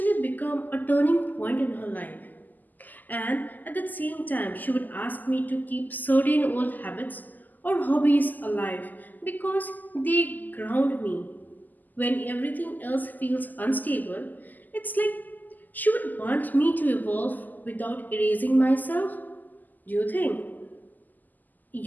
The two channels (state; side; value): late; right; 0.084 ms